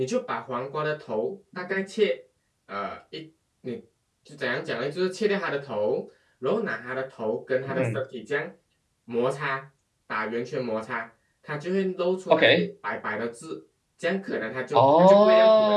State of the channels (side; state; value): both; identical; correlation 1.00